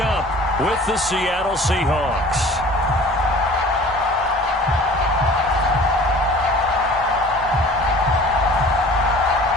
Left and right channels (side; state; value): both; normal; correlation 0.46